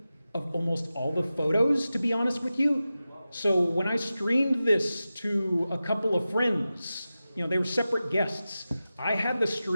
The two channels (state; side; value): inverted; both; correlation -0.94